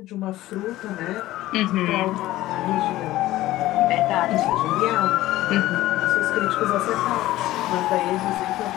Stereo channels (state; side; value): quieter; right; 16.0 dB